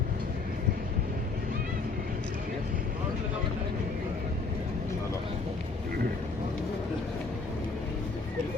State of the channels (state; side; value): quieter; right; 4.0 dB